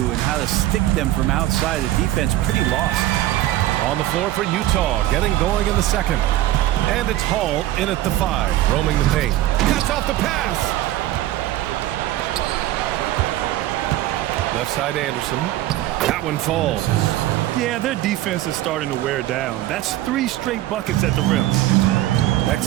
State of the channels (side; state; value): left; quieter; 14.6 dB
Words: and how to stick them from outside. The defense pretty lost. On the floor for Utah, getting going in the second. And it's Hall in at the 5, roaming the paint. Cuts off the pass. Left side Anderson. That one falls. Yeah, their defense is starting to wear down. That's 3 straight buckets at the rim.